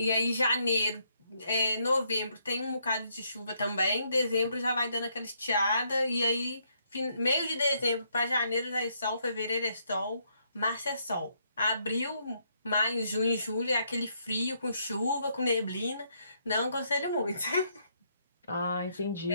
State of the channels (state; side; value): inverted; both; correlation -0.74